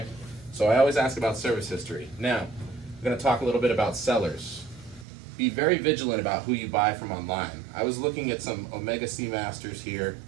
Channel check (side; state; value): left; drops out; at 5.1 s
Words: So I always ask about service history. Now, I'm gonna talk a little bit about sellers. Be very vigilant about who you buy from online. I was looking at some Omega Seamasters here